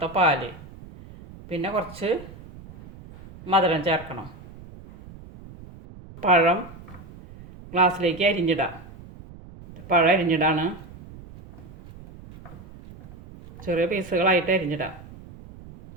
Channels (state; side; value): noise; right; rumble, 18 dB below the sound